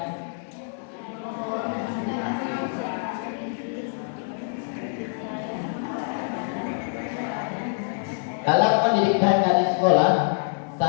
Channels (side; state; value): right; silent; digital silence